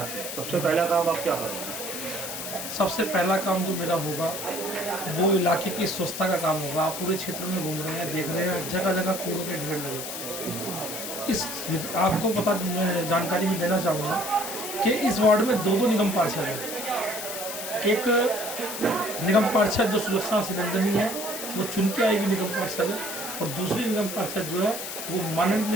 हैं सबसे पहला काम आप क्या करेंगे? सबसे पहला काम जो मेरा होगा वो इलाके की स्वच्छता का काम होगा। आप पूरे क्षेत्र में घूम रहे हैं, देख रहे हैं जगह जगह कूड़ों के ढेर लगे। इस आपको पता, मैं जानकारी भी देना चाहूँगा कि इस वार्ड में दो निगम पार्षद हैं। एक निगम पार्षद जो सुलक्षणा सिकंदनी है, वो चुन के आएगी निगम पार्षद है, और दूसरी निगम पार्षद जो है वो माननीय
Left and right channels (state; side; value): noise; left; hiss, 6 dB below the sound